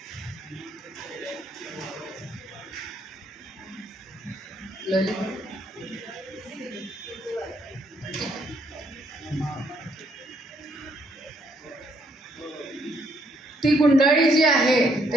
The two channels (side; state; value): both; normal; correlation 0.70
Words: ती गुंडाळी जी आहे